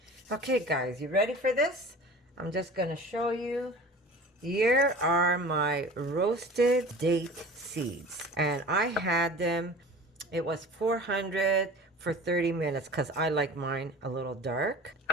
Okay, guys, you ready for this? I'm just going to show you. Here are my roasted date seeds, and I had them, it was 400 for 30 minutes because I like mine a little dark.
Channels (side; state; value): both; normal; correlation 0.39